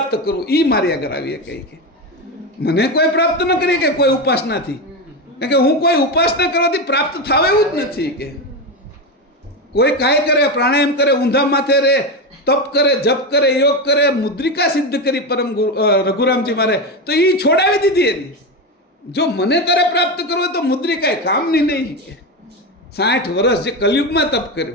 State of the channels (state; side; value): normal; both; correlation 0.15